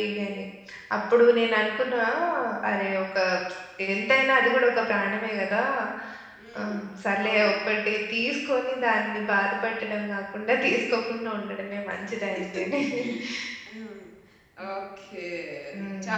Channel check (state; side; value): identical; both; correlation 1.00